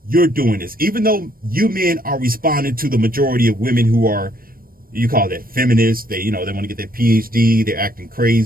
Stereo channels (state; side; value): late; left; 0.42 ms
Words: You're doing this. Even though you men are responding to the majority of women who are, you call that feminists. They want to get their PhD. They're acting